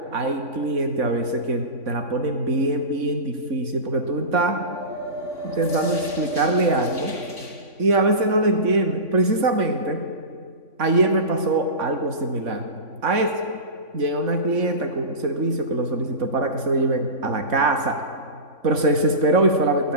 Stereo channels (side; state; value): left; late; 3.5 ms